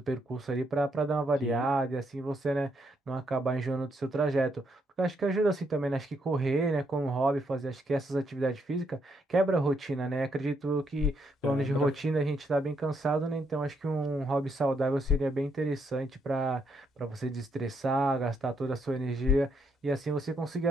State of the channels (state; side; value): normal; both; correlation 0.76